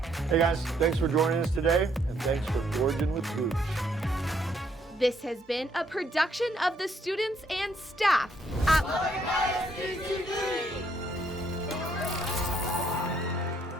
Hey guys, thanks for joining us today, and thanks for gorging with Gooch. This has been a production of the students and staff at Lubbock ISD-TV.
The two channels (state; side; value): normal; both; correlation 0.70